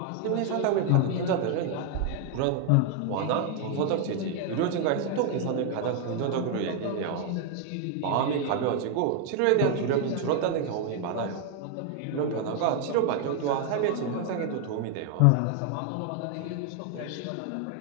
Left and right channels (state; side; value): different; both; correlation 0.01